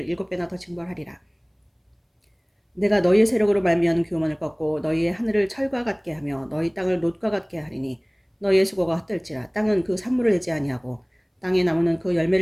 7배나 더 징벌하리라. 내가 너희의 세력으로 말미암은 교만을 꺾고 너희의 하늘을 철과 같게 하며 너희 땅을 놋과 같게 하리니 너희의 수고가 헛될지라. 땅은 그 산물을 내지 아니하고 땅의 나무는 그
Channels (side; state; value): both; identical; correlation 1.00